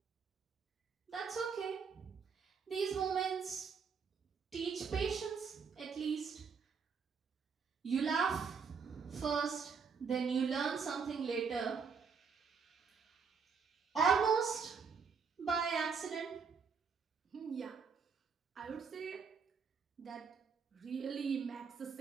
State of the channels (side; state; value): left; quieter; 5.8 dB